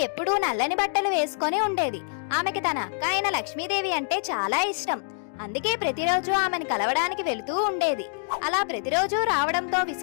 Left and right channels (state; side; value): silent; right; digital silence